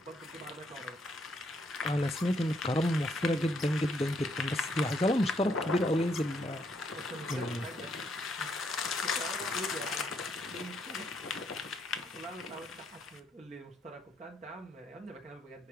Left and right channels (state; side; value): normal; both; correlation 0.73